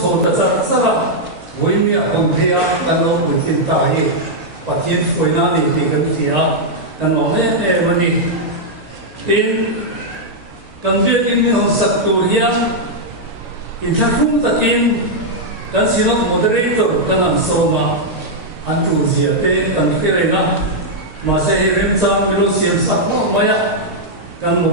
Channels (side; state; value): both; normal; correlation -0.05